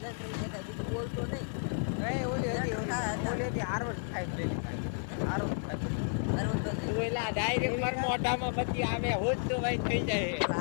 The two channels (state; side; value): silent; right; 56 dB below the other